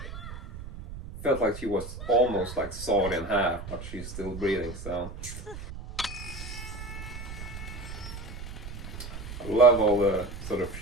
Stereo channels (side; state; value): right; noise; rumble, 10 dB below the sound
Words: felt like she was almost like sawed in half, but she's still breathing, so... I love all the sort of